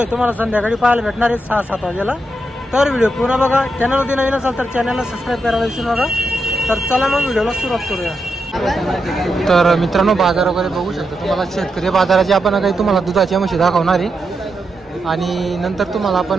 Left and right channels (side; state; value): both; normal; correlation 0.84